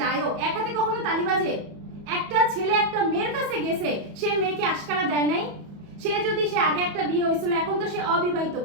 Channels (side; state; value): left; late; 34 ms